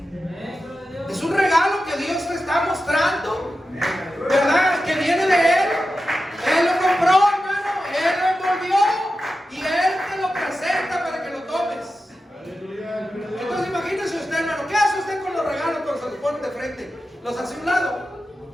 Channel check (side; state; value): both; normal; correlation 0.91